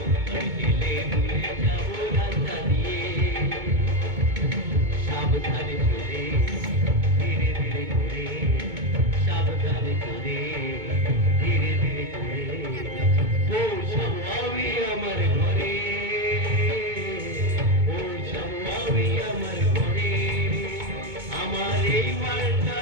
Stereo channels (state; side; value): late; left; 2.2 ms